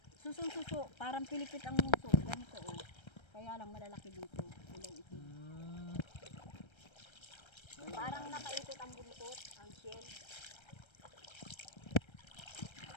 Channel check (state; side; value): late; right; 1.3 ms